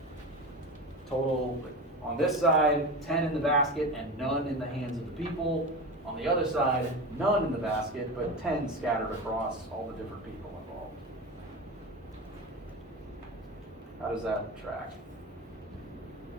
total, on this side, 10 in the basket and none in the hands of the people. On the other side, none in the basket, but 10 scattered across all the different people involved. How does that track?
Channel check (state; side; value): normal; both; correlation 0.26